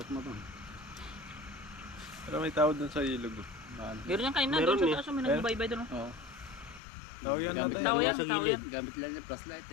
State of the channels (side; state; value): right; drops out; at 6.8 s